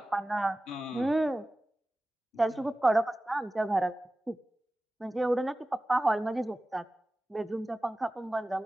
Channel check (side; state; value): both; normal; correlation 0.96